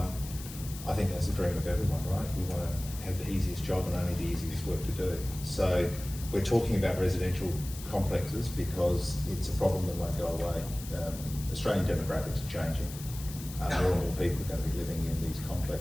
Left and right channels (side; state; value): left; noise; hiss, 13 dB below the sound